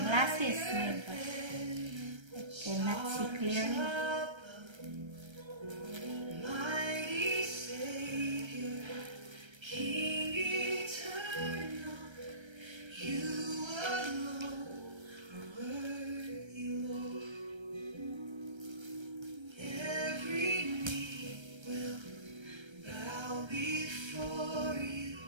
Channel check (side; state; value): left; late; 1.3 ms